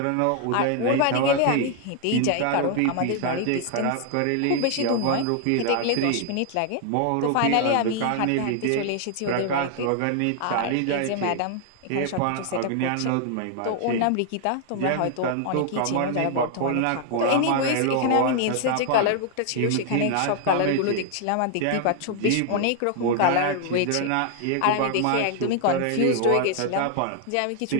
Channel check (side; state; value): both; different; correlation 0.00